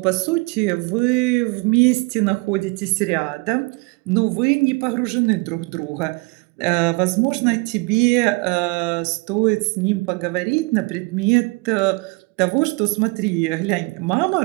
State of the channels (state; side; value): quieter; left; 27.8 dB